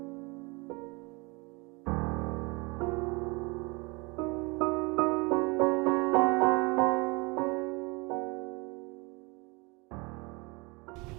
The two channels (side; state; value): left; quieter; 27.5 dB